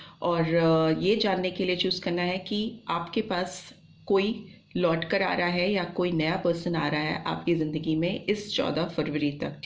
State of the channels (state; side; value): identical; both; correlation 1.00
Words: और ये जानने के लिए चूज करना है कि आपके पास कोई लौट कर आ रहा है या कोई नया पर्सन आ रहा है आपकी ज़िंदगी में इस 14 फरवरी तक.